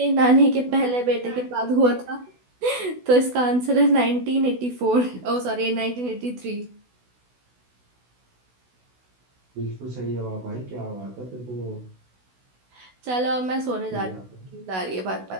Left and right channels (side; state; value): left; late; 16 ms